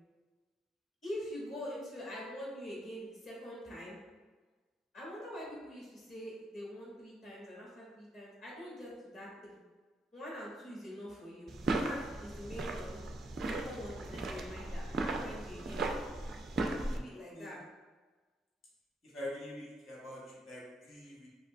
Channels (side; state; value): both; normal; correlation 0.77